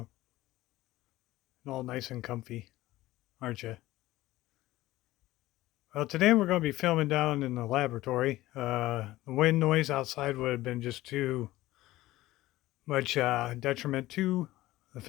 All nice and comfy, aren't you? Well, today we're going to be filming down in the laboratory. The wind noise outside would have been just too much detriment to the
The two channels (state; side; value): quieter; right; 16.9 dB